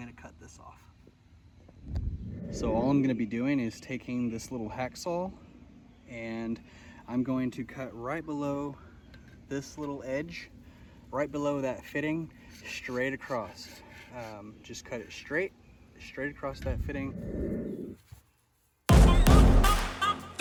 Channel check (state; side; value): identical; both; correlation 1.00